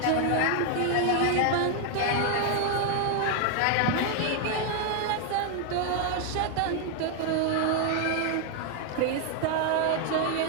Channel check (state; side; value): different; both; correlation 0.00